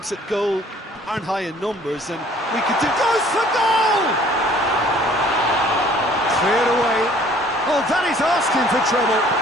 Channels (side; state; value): both; normal; correlation 0.55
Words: at goal aren't high in numbers, and we could do... Goes for goal! Cleared away. Oh, that is asking for trouble.